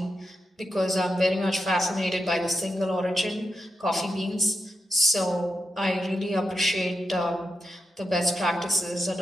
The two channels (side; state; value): both; normal; correlation 0.88